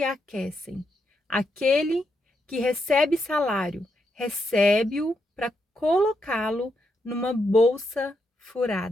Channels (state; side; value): normal; both; correlation 0.81